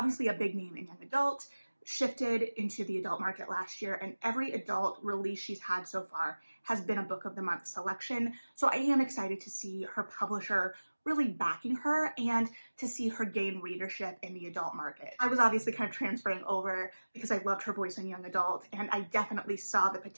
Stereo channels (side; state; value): both; inverted; correlation -1.00